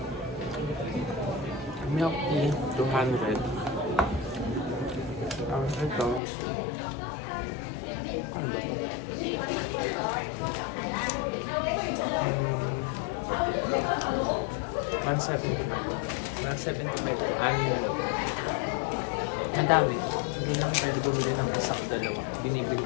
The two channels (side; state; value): right; drops out; at 6.2 s